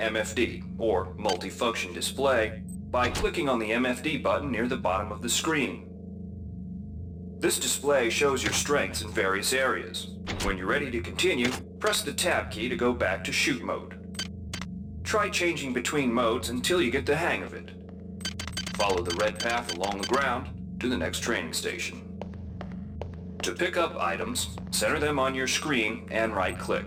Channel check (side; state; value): both; identical; correlation 1.00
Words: or multifunction display, by clicking on the MFD button near the bottom of the screen. This display shows your strengths in various areas. When you're ready to continue, press the tab key to go back to shoot mode. Try changing between modes until you get the hang of it. Follow the red path along the ground to the next training station. To pick up items, center them on your screen and